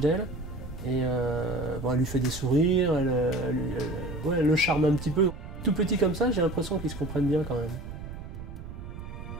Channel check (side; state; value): right; noise; rumble, 11 dB below the sound